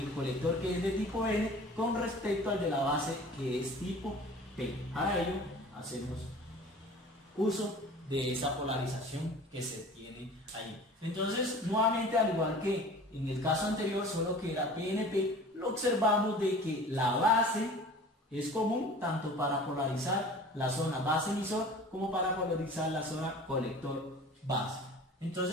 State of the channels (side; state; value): both; normal; correlation 0.42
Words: colector que es de tipo N con respecto al de la base que es tipo P. Para ello, hacemos uso de esa polarización que se tiene ahí. Entonces, nuevamente, al igual que en el caso anterior, solo que era PNP, lo observamos de que la base es común tanto para polarizar la zona base emisor como para polarizar la zona colector base.